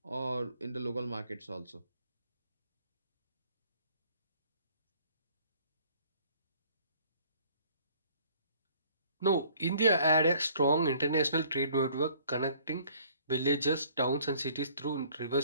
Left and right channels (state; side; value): inverted; both; correlation -0.57